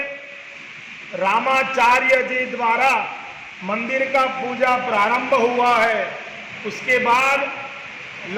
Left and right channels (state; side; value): identical; both; correlation 1.00